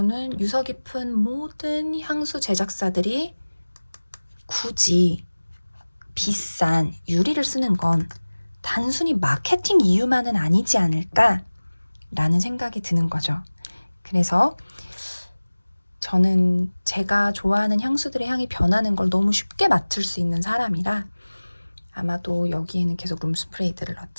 유서 깊은 모든 향수 제작사들이 굳이 비싼 유리를 쓰는 건 단순히 마케팅 이유만은 아니지 않을까 라는 생각이 드는 거죠. 그래서 저는 제가 좋아하는 향수들의 향이 변하는 걸 너무 쉽게 맡을 수 있는 사람이라 아마도 여기에는 계속 룸스프레이들을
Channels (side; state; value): both; inverted; correlation -1.00